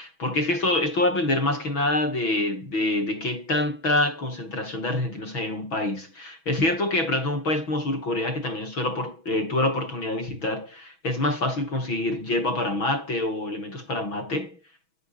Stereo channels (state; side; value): late; right; 6.2 ms